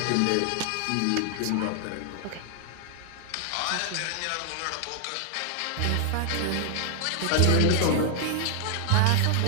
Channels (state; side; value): different; both; correlation -0.01